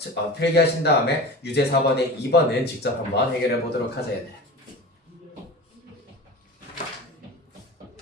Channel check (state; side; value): normal; both; correlation 0.33